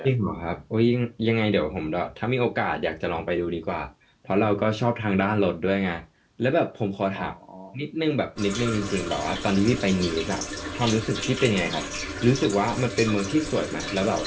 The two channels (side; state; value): both; identical; correlation 1.00